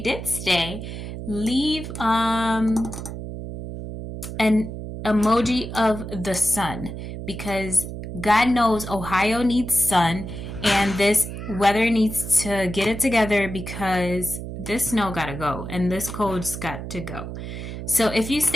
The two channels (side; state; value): right; noise; hum, 8 dB below the sound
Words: did stay, leave an emoji of the sun, because God knows Ohio needs sun, and this weather needs to get it together, because this snow gotta go and this cold's got to go. So if you